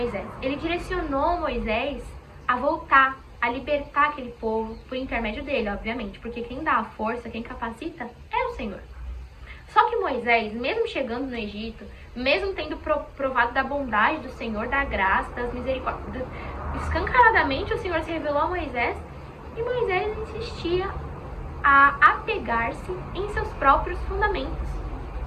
Ele direcionou Moisés a voltar, a libertar aquele povo por intermédio dele, obviamente. Porque quem dá a força, quem capacita, é o Senhor. Só que Moisés, mesmo chegando no Egito, mesmo tendo provado da bondade do Senhor, da graça, das misericórdias, escancaradamente o Senhor se revelou a Moisés, e Moisés insistia a apegar-se em seus próprios fundamentos.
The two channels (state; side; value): identical; both; correlation 1.00